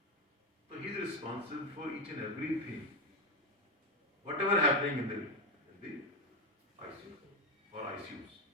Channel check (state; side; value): normal; both; correlation 0.09